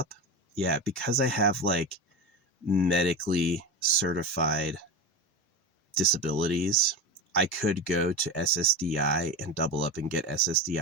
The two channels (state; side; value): normal; both; correlation 0.23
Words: Yeah, because I have like medically certified disabilities, I could go to SSDI and double up and get